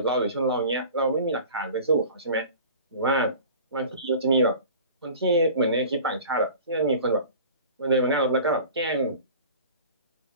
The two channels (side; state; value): both; inverted; correlation -0.41